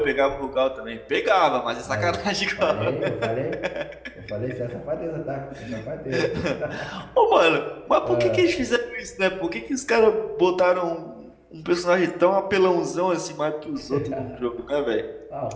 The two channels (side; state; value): both; identical; correlation 1.00